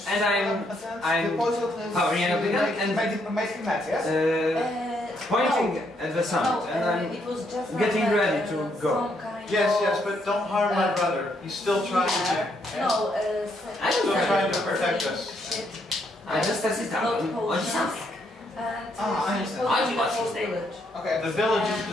And I'm powering up again and making that, yes? pointing at the sun, No, and I'm it was just getting like, ready to go. some kind Yes, of, but don't harm my brother. He's still trying to. No, I don't Still have trying it. to protect us. I just set it Not down. potions. something. And I understand. I do the what whole she's saying. village. Okay. The village is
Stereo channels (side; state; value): both; normal; correlation 0.74